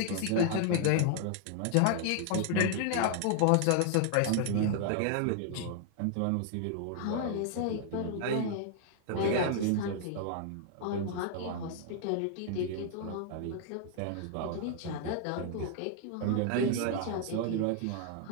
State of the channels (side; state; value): both; different; correlation 0.00